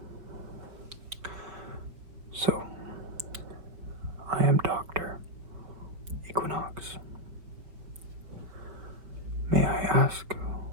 So, I am Dr. Equinox. May I ask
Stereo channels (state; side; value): late; left; 5.1 ms